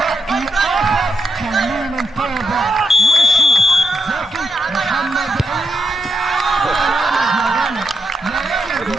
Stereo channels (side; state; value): both; normal; correlation 0.83